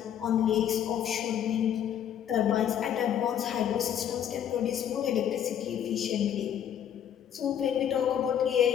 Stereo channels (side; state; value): right; quieter; 9.6 dB